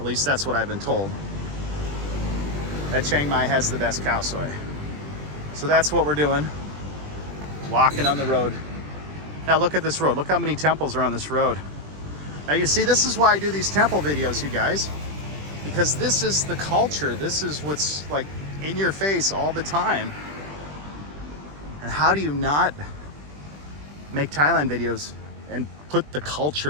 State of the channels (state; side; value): late; left; 20 ms